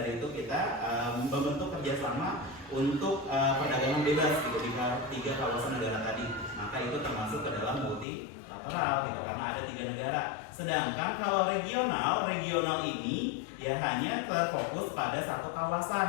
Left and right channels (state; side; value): drops out; right; at 8.1 s